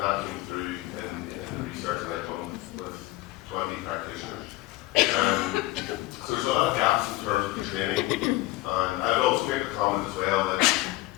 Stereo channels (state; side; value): quieter; right; 18.4 dB